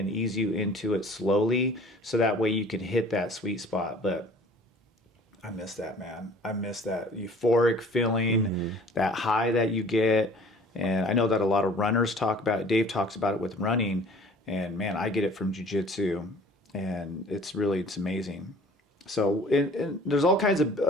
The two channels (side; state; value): both; normal; correlation 0.49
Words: ease you into it slowly so that way you can hit that sweet spot. But I miss that, man. I miss that euphoric feeling, Hmm. that high that you get. And I know that a lot of runners talk about it. Dave talks about it with running. And man, I get it from jujitsu. And it's amazing. So, and there's all kinds of